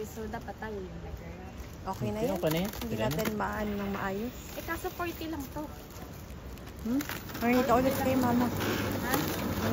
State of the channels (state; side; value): identical; both; correlation 1.00